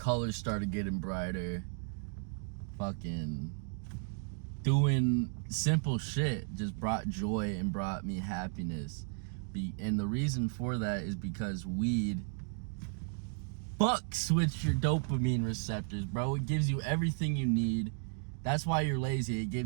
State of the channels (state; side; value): silent; left; 55 dB below the other